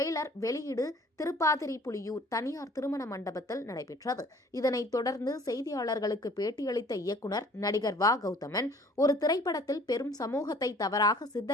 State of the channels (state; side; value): normal; both; correlation 0.53